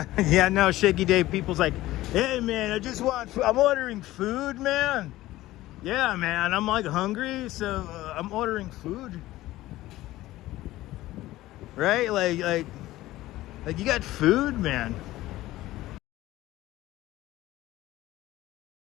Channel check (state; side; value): quieter; right; 16.5 dB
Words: Yeah, no, Shaky Dave, people's like, hey man, I'm ordering food, man. Yeah, man, I'm like hungry, so I'm ordering food. Right? Like you got food, man.